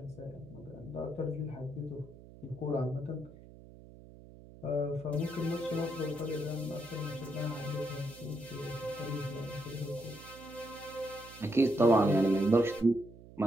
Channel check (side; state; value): right; noise; hum, 19 dB below the sound